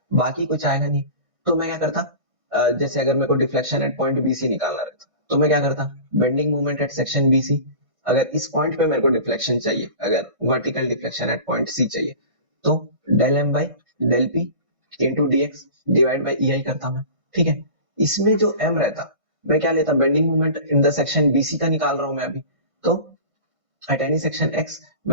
बाकी कुछ आएगा नहीं। तो मैं क्या करता, जैसे अगर मेरे को deflection at point B C निकालना रहता, तो मैं क्या करता, bending moment at section B C, अगर इस पॉइंट पे मेरे को डिफ्लेक्शन चाहिए, अगर vertical deflection at point C चाहिए, तो del M by del P into D X divide by E I करता मैं, ठीक है। इसमें जो m रहता, मैं क्या लेता, bending moment in the section BC का निकाल रहा हूं मैं अभी, तो एट एनी सेक्शन x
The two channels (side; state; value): left; late; 1.6 ms